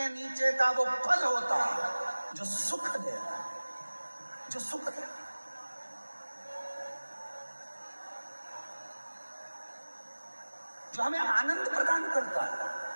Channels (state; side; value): inverted; both; correlation -1.00